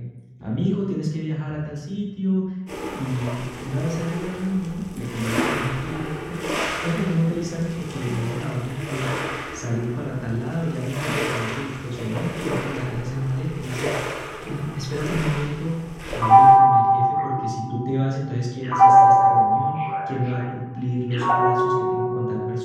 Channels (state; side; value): identical; both; correlation 1.00